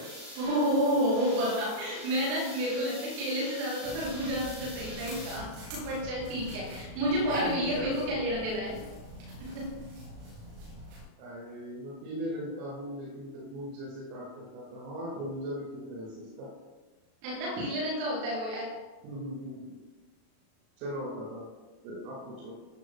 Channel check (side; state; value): left; late; 36 ms